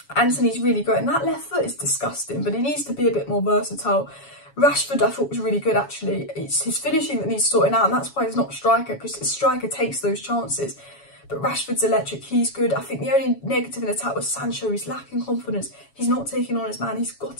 Antony's really growing. That left foot is disgusting, but he needs to be a bit more versatile. Rashford, I thought, was really good, actually. It's his finishing that needs sorting out, and that's why he's not a striker, because a striker takes those chances. But Rashford's electric, he's good. I think the only negative in attack was Sancho. He's lacking confidence. He's not taking on his man. He's got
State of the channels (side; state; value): right; late; 7.1 ms